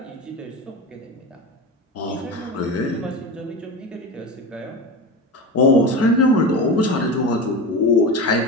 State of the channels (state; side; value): normal; both; correlation 0.25